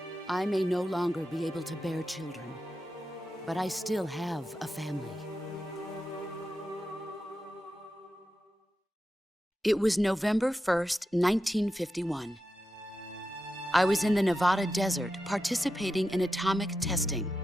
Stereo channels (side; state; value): both; normal; correlation 0.89